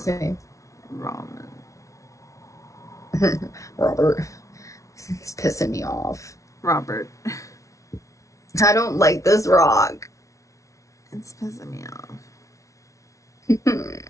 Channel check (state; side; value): late; right; 0.15 ms